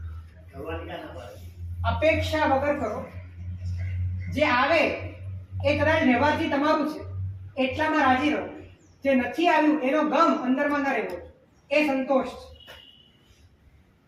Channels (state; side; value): identical; both; correlation 1.00